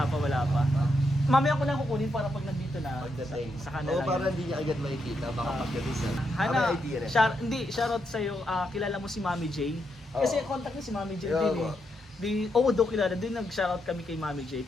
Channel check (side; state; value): both; normal; correlation 0.81